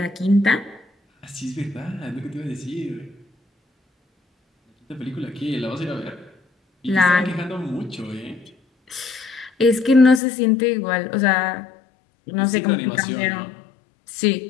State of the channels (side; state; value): right; drops out; at 10.2 s